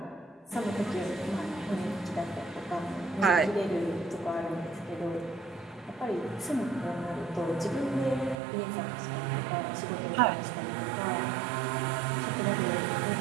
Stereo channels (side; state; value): left; drops out; at 8.3 s